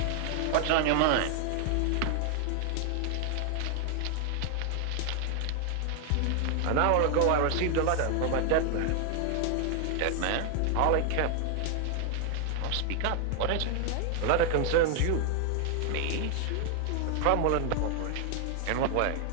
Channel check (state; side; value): different; both; correlation 0.00